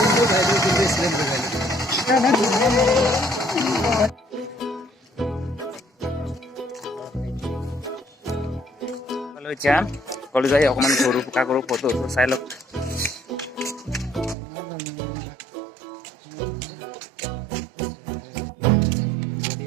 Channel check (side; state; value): left; drops out; at 14.4 s